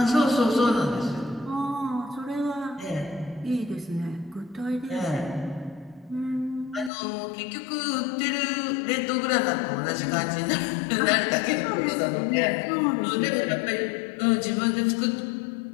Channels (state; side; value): drops out; right; at 6.9 s